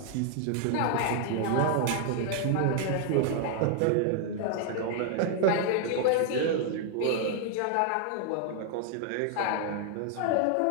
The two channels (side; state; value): both; different; correlation 0.00